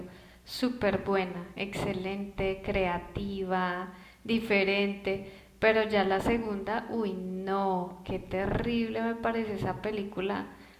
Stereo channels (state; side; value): identical; both; correlation 1.00